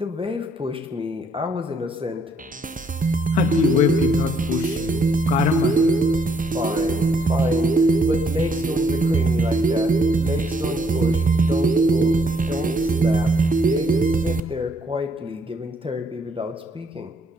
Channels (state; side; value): normal; both; correlation 0.69